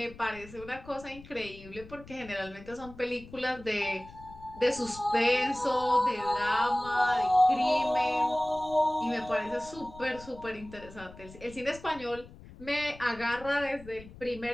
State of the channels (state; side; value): noise; left; rumble, 18 dB below the sound